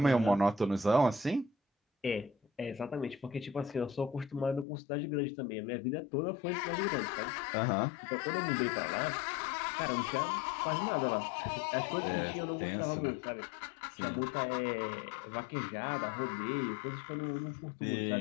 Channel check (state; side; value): drops out; right; at 4.7 s